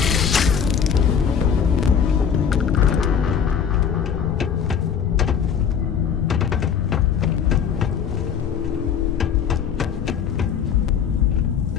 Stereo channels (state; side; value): quieter; right; 7.5 dB